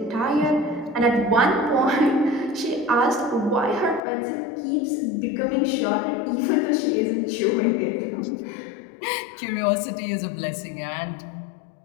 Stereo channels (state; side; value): drops out; right; at 4.0 s